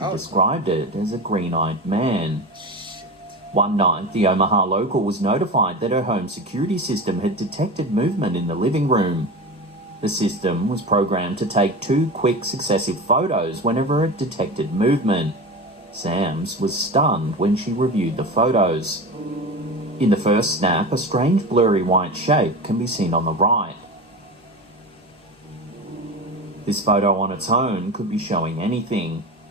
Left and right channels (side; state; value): both; normal; correlation 0.28